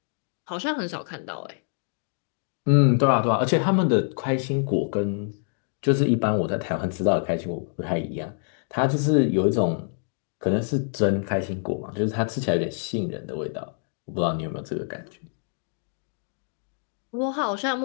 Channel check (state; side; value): silent; right; 61 dB below the other